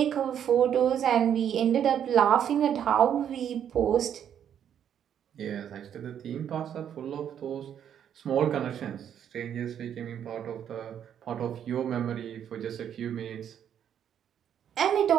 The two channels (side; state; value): left; quieter; 9.2 dB